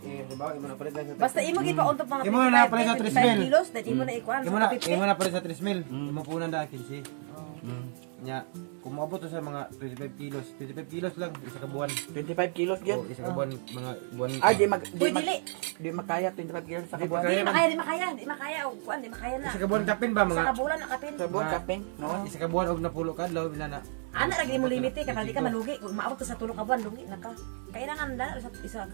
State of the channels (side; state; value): left; silent; 58 dB below the other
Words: halimbawa imo na palit lang sa basta imo gipa-untog mga Imo na palit sa 55 3 mil. kilos, that imo na ikuan Imo na, sa 50. imo na palit sa 3 mil. Imo punan da 15. Nya, kung maabot to sa mga 25 kilos. 25 kilos lang, isa ka buwan. 25 kilos O, gyud. isa ka buwan, mga buwan. Uy, dili. Di makaya 25 kilos sa Di kabuan. makaya. Di makaya. O, kuan, di makaya na. Isa ka buwan kapin ba, Sa mga? kabulan na kapin. Sa buwan Mga- kapin, noon. Isa ka buwan, og napulo ka, law, minana. Ana lagi mo limite kay para di ka malugi. Kung maabot to sa tulong ka buwan, lugi na ka. Kailangan dala sa isa